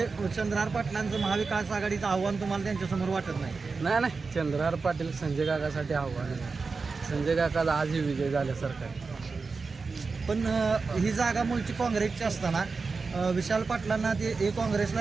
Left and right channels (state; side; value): quieter; left; 4.5 dB